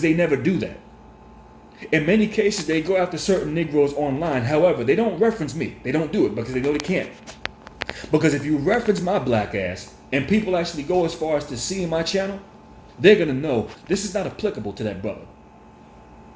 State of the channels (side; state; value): both; identical; correlation 1.00